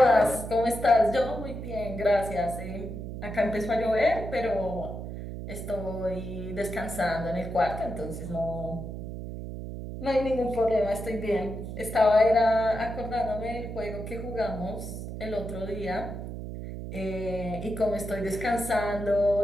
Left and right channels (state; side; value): noise; right; hum, 8 dB below the sound